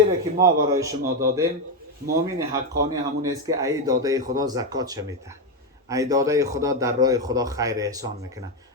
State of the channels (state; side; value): normal; both; correlation 0.07